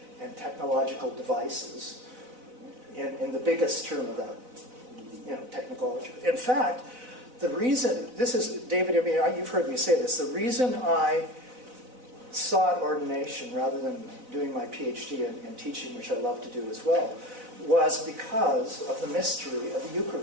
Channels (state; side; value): late; left; 4.0 ms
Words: and technological devices in the biggest term of that, technology. In fact, the reason, this is, David, I mean, you've heard me say this, the reason I sought ordination rather than doing my PhD in teaching, which I love to do as well, was because of the mystery of the